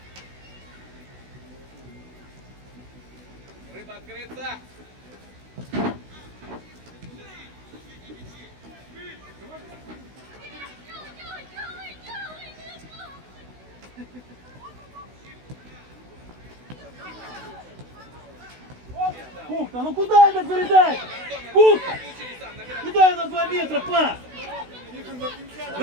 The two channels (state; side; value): late; left; 16 ms